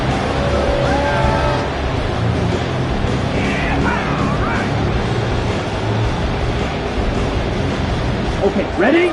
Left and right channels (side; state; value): both; identical; correlation 1.00